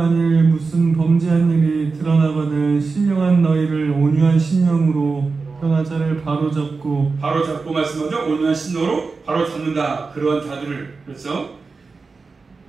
무슨 범죄한 일이 드러나거든 신령한 너희를 온유한 심령으로 변화자를 바로잡고 말씀하죠. 온유한 심령으로 바로 잡는다. 그러한 자들을. 그렇죠?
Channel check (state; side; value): quieter; left; 4.3 dB